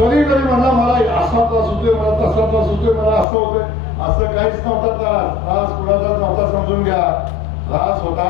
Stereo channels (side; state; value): right; drops out; at 3.2 s